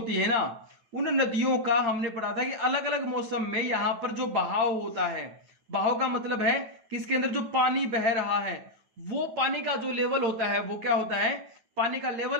है ना, उन नदियों का हमने पढ़ा था कि अलग अलग मौसम में यहाँ पर जो बहाव होता है, बहाव का मतलब है कि इसके अंदर जो पानी बह रहा है वो पानी का जो लेवल होता है वो क्या होता है, पानी का लेवल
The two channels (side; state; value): left; late; 9.2 ms